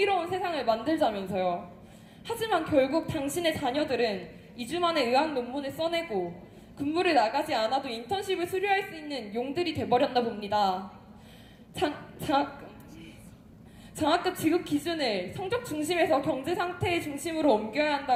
세상을 만들자면서요. 하지만 결국 당신의 자녀들은 2주 만에 의학 논문을 써내고 근무를 나가지 않아도 인턴십을 수료할 수 있는 용들이 돼버렸나 봅니다. 장학금 지급 기준을 성적 중심에서 경제 상태의 중심으로 옮겨야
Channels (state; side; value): identical; both; correlation 1.00